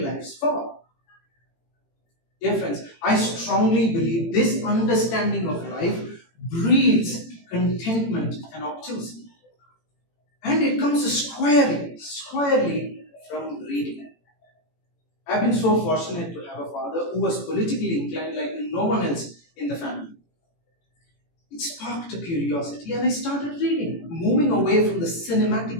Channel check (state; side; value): late; right; 18 ms